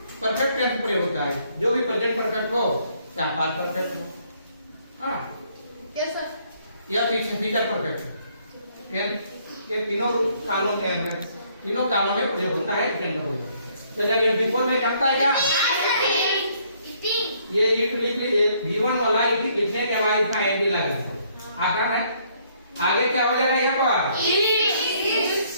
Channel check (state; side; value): inverted; both; correlation -0.66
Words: परफेक्ट टेंस प्रयोग होता है, जो भी प्रेजेंट परफेक्ट हो या पास्ट परफेक्ट हो, हाँ या पीछे फ्यूचर परफेक्ट हो, ये तीनों कालों में प्रयोग होता है इटेन का प्रयोग। तो जब बिफोर में जानता है क्या, ये ईट लिख लीजिए, V1 वाला ईट लिखने के बाद इसका एम भी लगा आकार है। आगे क्या हो जाएगा यहाँ पर